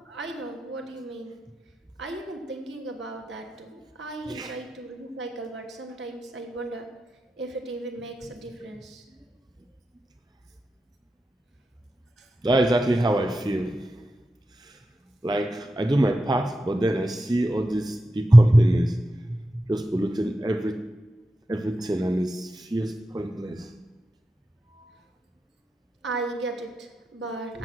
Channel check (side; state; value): both; normal; correlation 0.90